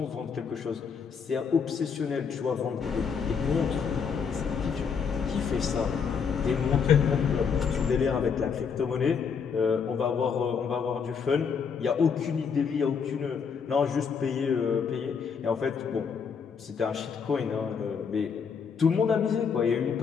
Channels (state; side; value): quieter; right; 6.3 dB